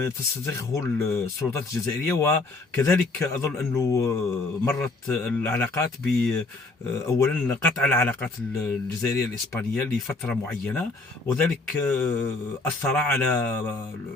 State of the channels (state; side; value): quieter; right; 3.4 dB